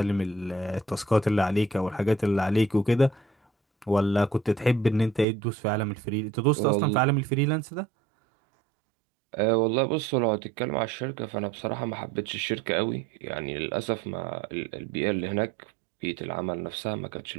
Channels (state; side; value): drops out; left; at 5.2 s